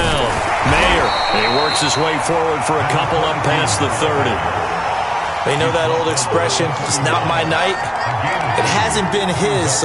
Mayer, he works his way forward for a couple up past the 30. They know that old expression, it's not my night. It hasn't been his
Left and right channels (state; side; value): identical; both; correlation 1.00